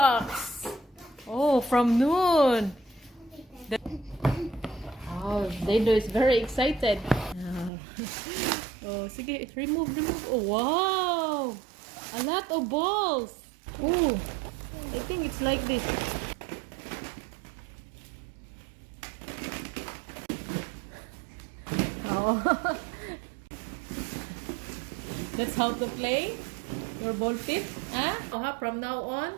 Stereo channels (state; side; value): drops out; left; at 7.7 s